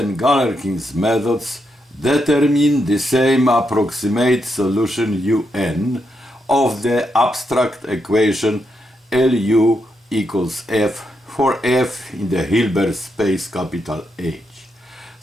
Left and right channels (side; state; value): both; normal; correlation 0.82